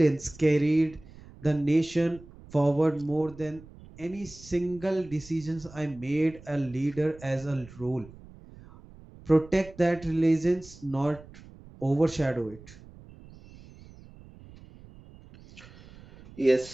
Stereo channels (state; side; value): noise; right; rumble, 20 dB below the sound